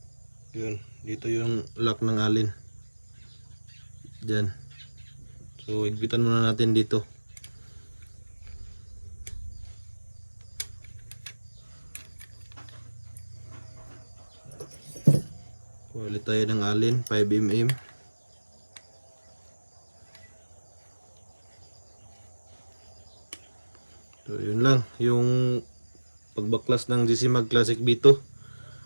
Yun. Dito yung lock ng alin. Diyan. So higpitan muna natin dito. Kuha ulit tayo ng alin, 5mm. So yun lang, yung pagbaklas ng GC Mag Classic B2.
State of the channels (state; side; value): inverted; both; correlation -1.00